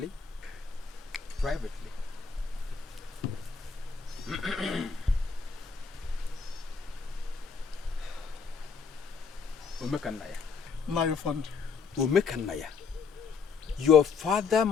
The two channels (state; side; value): quieter; right; 5.4 dB